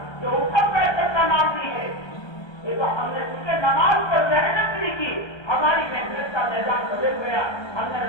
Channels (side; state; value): right; late; 1.3 ms